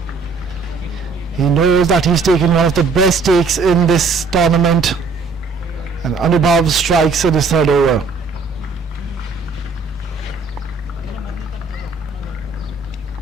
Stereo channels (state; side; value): quieter; left; 4.3 dB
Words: He knows that he's taken one of the best takes in this tournament, and Anubhav strikes in his third over.